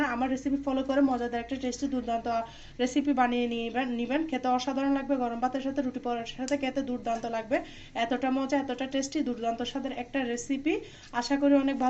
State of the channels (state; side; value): identical; both; correlation 1.00